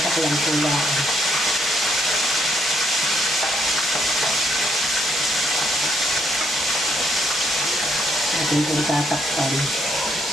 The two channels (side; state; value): both; normal; correlation 0.72